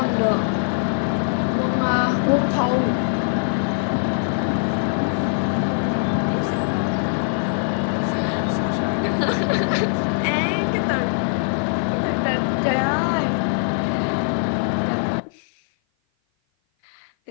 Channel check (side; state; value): right; silent; 56 dB below the other